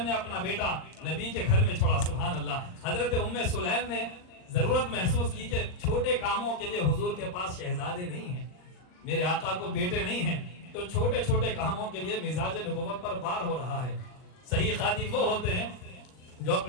نے اپنا بیٹا نبی کے گھر میں چھوڑا، سبحان اللہ. حضرت ام سلیم نے ضرورت محسوس کی کہ چھوٹے کاموں کے لیے حضور کے پاس شہزادے نہیں ہیں، میرے آقا کو بیٹے نہیں ہیں، تو چھوٹے چھوٹے کاموں کے لیے مزاج نبوت پر بار ہو رہا ہے. صحیح خادم وہ ہوتے ہیں جو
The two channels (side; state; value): right; late; 39 ms